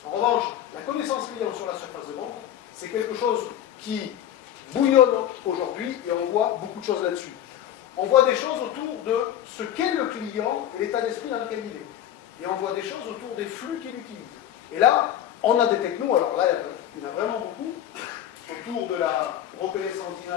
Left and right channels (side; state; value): right; quieter; 11.0 dB